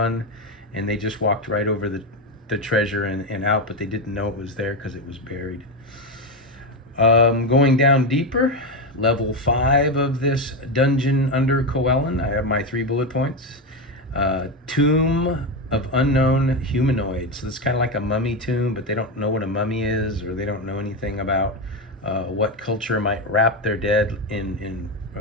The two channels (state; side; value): normal; both; correlation 0.12